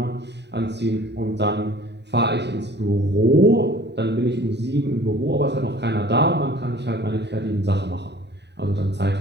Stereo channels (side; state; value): left; late; 0.50 ms